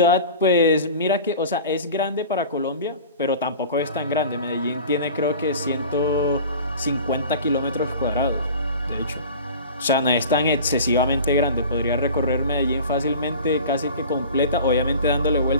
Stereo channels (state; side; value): inverted; both; correlation -0.39